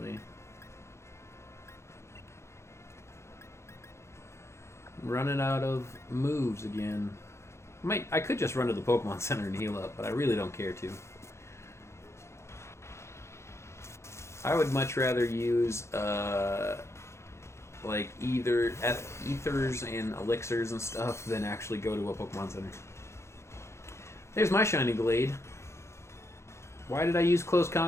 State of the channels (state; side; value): late; right; 0.13 ms